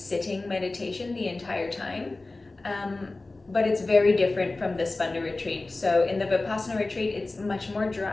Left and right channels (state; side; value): quieter; right; 3.2 dB